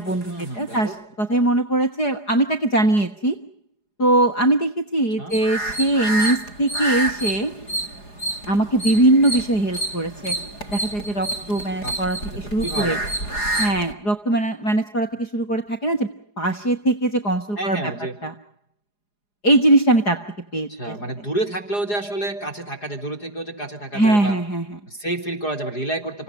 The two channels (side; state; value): right; late; 4.9 ms